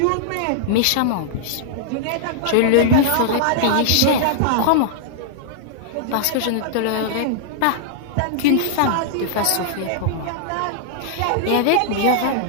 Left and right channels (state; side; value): different; both; correlation -0.01